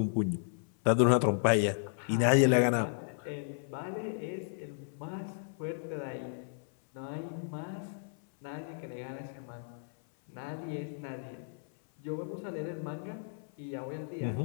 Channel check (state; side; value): silent; right; 55 dB below the other